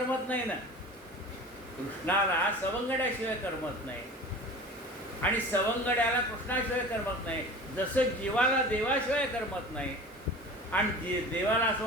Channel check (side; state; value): both; normal; correlation 0.38